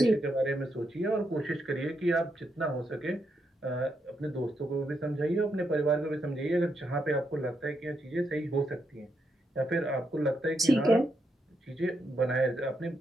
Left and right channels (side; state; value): both; normal; correlation 0.81